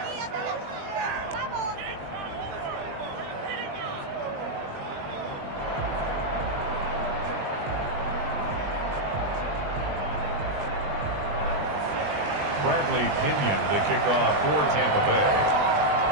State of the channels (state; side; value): late; left; 20 ms